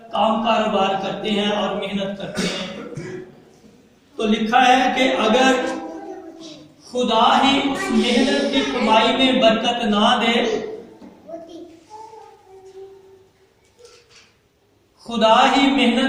काम कारोबार करते हैं और मेहनत करते हैं। तो लिखा है कि अगर खुदा ही उस मेहनत की कमाई में बरकत ना दे, खुदा ही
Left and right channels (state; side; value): identical; both; correlation 1.00